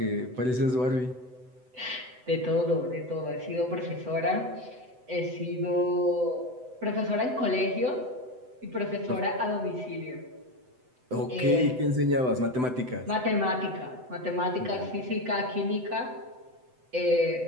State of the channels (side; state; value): left; late; 7.9 ms